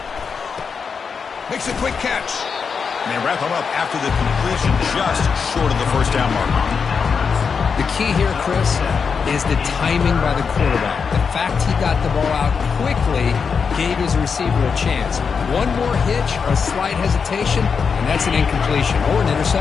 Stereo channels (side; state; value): right; quieter; 5.8 dB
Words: Makes a quick catch. And they wrap him up after the completion just short of the 1st down mark. The key here, Chris, is the timing by the quarterback. The fact he got the ball out quickly gave his receiver a chance. One more hitch or a slight hesitation, and that's an incompletion or an